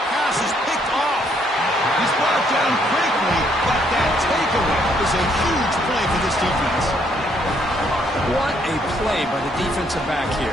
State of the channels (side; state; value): both; normal; correlation 0.69